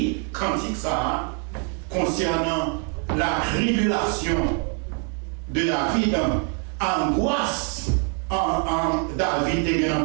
cantique ça concernant la tribulation de David, angoisse en David et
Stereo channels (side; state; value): left; quieter; 38.9 dB